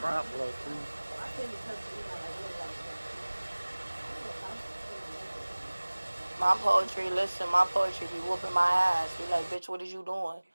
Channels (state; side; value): inverted; both; correlation -1.00